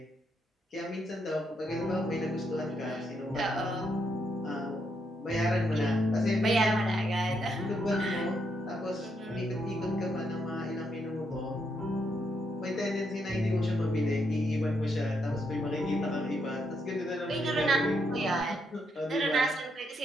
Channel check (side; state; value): both; normal; correlation 0.78